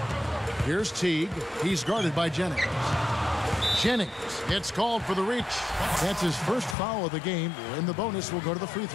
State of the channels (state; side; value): drops out; right; at 6.8 s